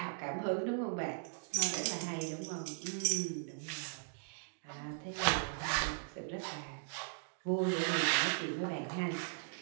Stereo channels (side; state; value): left; silent; digital silence